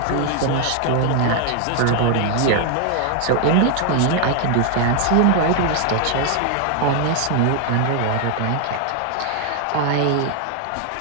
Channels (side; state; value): both; different; correlation 0.00